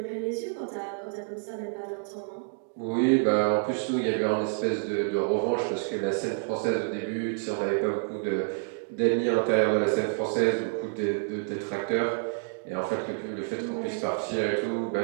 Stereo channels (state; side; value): silent; left; digital silence